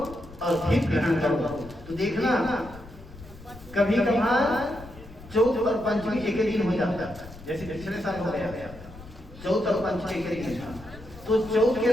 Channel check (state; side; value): noise; left; rumble, 17 dB below the sound